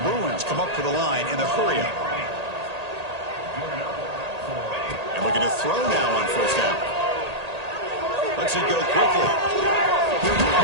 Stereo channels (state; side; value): late; left; 1.8 ms